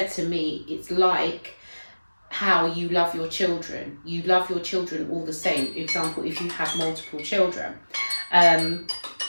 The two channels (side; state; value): both; inverted; correlation -1.00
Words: to me, it's like how you love your children. You love your children all the same. Example, if you have multiple children,